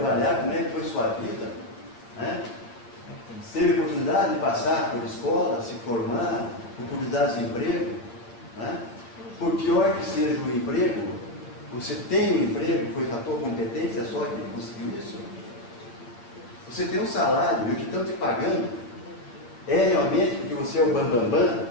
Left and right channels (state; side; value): late; right; 8.5 ms